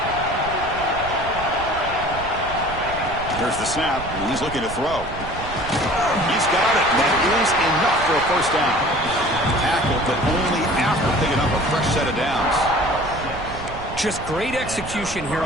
Here's the snap, and he's looking to throw. He's got it. That is enough for a 1st down. Tackle, but only after picking up a fresh set of downs. Just great execution here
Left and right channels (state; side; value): noise; right; rumble, 11 dB below the sound